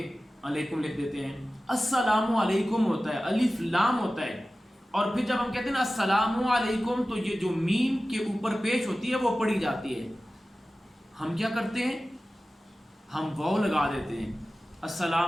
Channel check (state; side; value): normal; both; correlation 0.96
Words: अलैकुम लिख देते हैं। अस्सलामु अलैकुम होता है, अलिफ लाम होता है, और फिर जब हम कहते हैं ना अस्सलामु अलैकुम तो ये जो मीम के ऊपर पेश होती है वो पढ़ी जाती है। हम क्या करते हैं, हम वाव लगा देते हैं